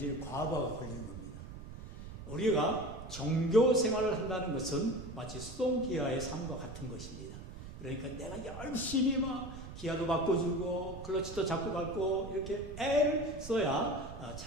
과부하가 걸리는 겁니다. 우리가 정교 생활을 한다는 것은 마치 수동기아의 삶과 같은 것입니다. 그러니까 내가 열심히 막 기아도 바꿔주고 클러치도 잡고 밟고 이렇게 애를 써야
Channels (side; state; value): right; noise; rumble, 12 dB below the sound